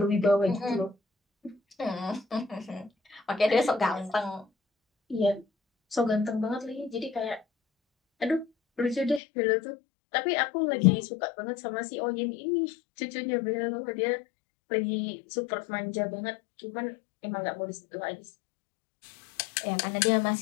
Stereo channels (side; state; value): right; drops out; at 9.2 s